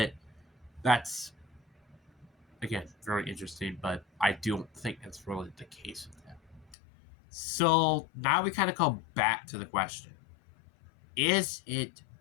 that's, again, very interesting, but I don't think that's really the case with him. So now we kind of come back to the question. Is it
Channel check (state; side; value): drops out; right; at 6.8 s